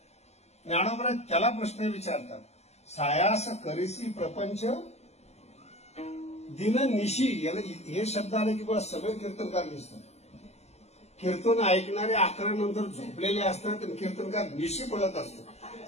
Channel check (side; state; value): right; late; 0.31 ms